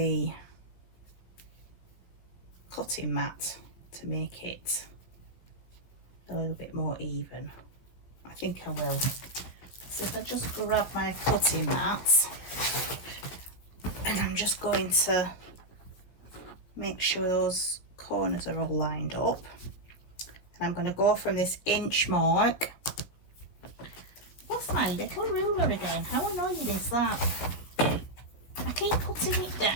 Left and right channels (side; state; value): right; late; 17 ms